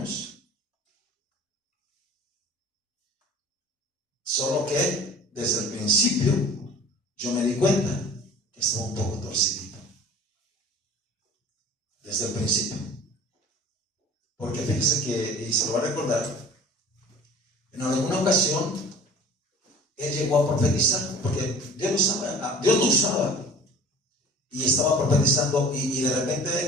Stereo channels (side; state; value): both; normal; correlation 0.44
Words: Solo que desde el principio yo me di cuenta que estaba un poco torcido. Desde el principio. Porque fíjese que, y se lo va a recordar, en alguna ocasión él llegó a profetizar, porque Dios lo usaba, y estaba profetizando, y de